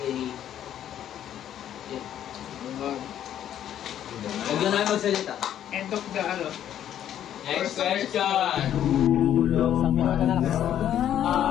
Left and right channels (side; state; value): right; quieter; 10.7 dB